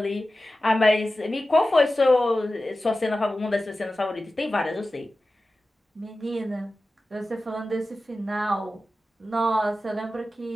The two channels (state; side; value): normal; both; correlation 0.94